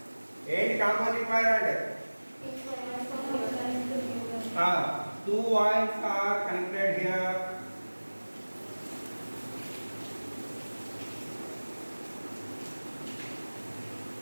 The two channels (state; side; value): inverted; both; correlation -1.00